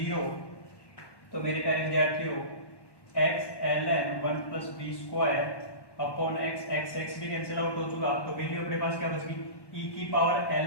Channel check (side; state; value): right; late; 1.1 ms